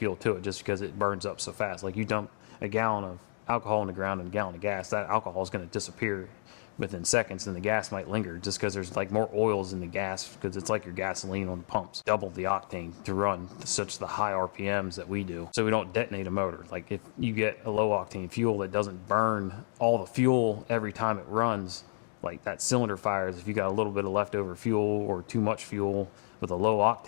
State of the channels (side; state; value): right; silent; digital silence